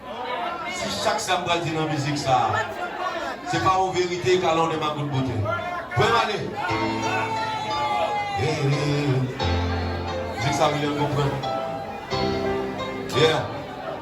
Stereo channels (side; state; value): both; identical; correlation 1.00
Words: Si chaque samedi dit dans la musique ça, c'est pas en vérité qu'à l'on est ma bonne beauté. Vous pouvez m'aller. Musique ça veut bien comprendre. Yeah.